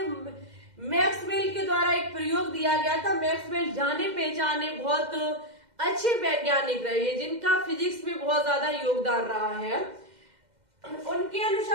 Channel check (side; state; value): left; late; 2.1 ms